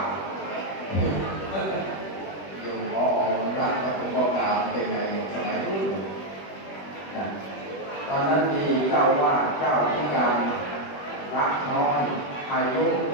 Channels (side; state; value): right; late; 21 ms